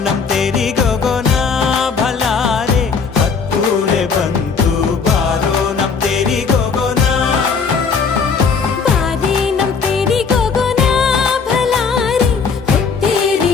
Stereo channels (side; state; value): right; quieter; 5.5 dB